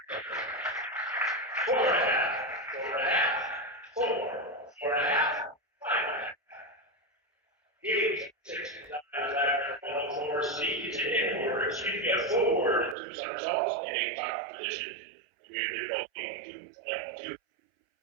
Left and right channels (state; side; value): drops out; left; at 13.0 s